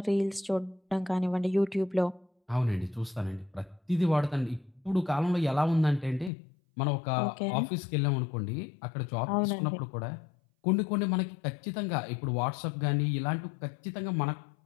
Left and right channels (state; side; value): drops out; right; at 6.3 s